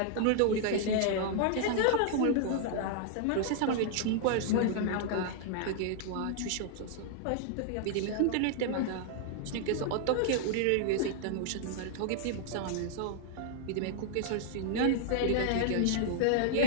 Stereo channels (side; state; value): both; different; correlation -0.01